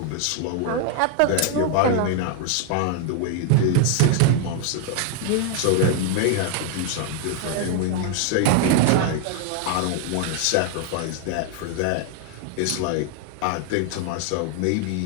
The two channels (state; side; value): different; both; correlation 0.00